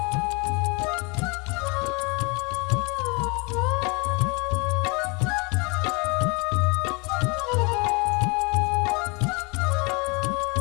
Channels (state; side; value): quieter; right; 29.5 dB